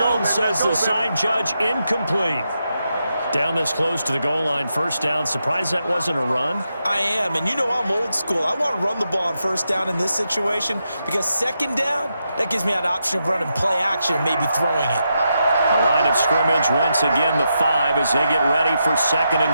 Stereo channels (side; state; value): both; inverted; correlation -0.85